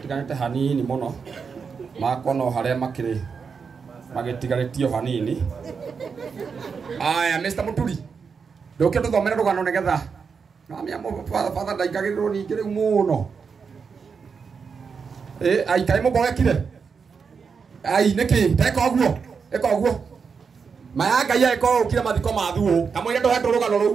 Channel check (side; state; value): left; quieter; 5.7 dB